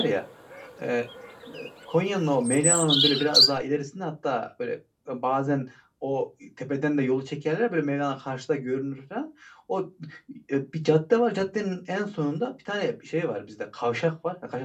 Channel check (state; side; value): identical; both; correlation 1.00